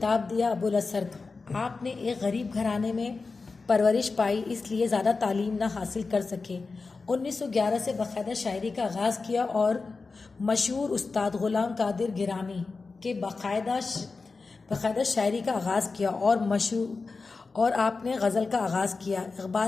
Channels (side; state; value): right; quieter; 4.2 dB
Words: دیا ابو الاثر کا۔ آپ نے ایک غریب گھرانے میں پرورش پائی، اس لیے زیادہ تعلیم نہ حاصل کر سکے۔ 1911 سے باقاعدہ شاعری کا آغاز کیا اور مشہور استاد غلام قادر گیلانی کے باقاعدہ شاعری کا آغاز کیا اور آپ نے غزل کا آغاز کیا۔